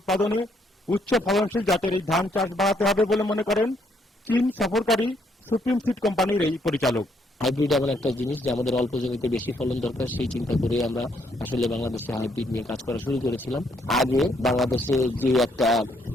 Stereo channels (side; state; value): both; normal; correlation 0.71